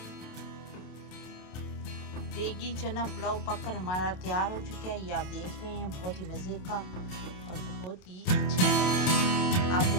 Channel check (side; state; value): right; late; 27 ms